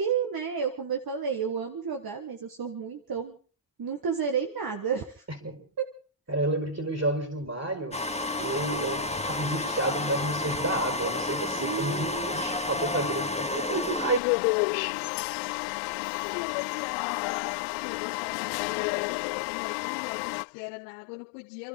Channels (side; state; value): right; drops out; at 14.2 s